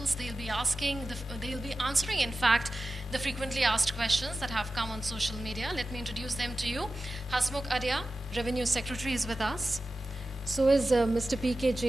They'll be answering in fact the frequently asked questions that have come on social media. Let me introduce them to you. Hasmukh Adhia, Revenue Secretary, is with us. So is Mr. P.K.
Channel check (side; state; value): both; normal; correlation 0.94